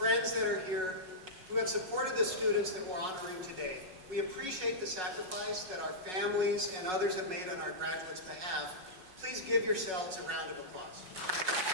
that are here, who have supported the students that we're honoring today. We appreciate the sacrifice that our families and others have made on our graduates' behalf. Please give yourselves a round of applause.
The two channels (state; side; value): late; left; 5.4 ms